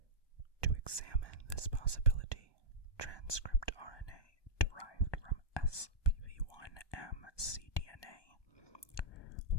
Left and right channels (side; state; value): right; late; 1.2 ms